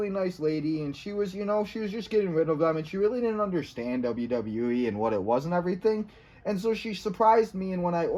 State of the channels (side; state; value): both; identical; correlation 1.00